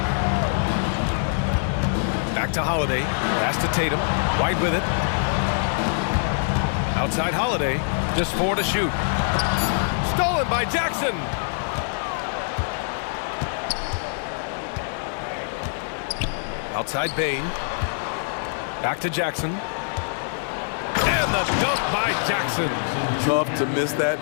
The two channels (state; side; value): silent; right; 58 dB below the other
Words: Back to Holiday. Pass to Tatum. White with it. Outside Holiday. Just 4 to shoot. Stolen by Jackson. Outside Bain. Back to Jackson. And the dunk by Jackson. Tough to miss